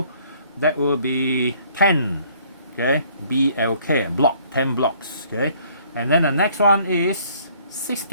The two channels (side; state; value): both; inverted; correlation -0.60